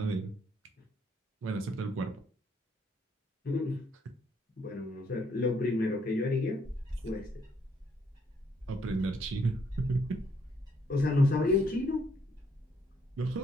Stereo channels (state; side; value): normal; both; correlation 0.70